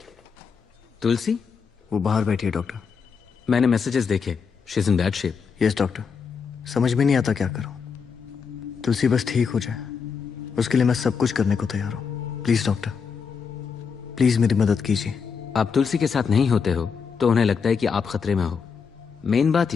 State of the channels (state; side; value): quieter; right; 6.0 dB